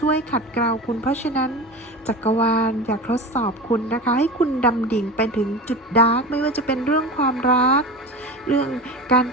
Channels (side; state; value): both; normal; correlation 0.29